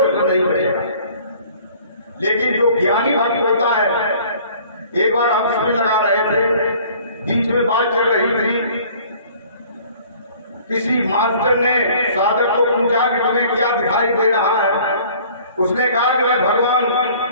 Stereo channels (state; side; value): inverted; both; correlation -0.52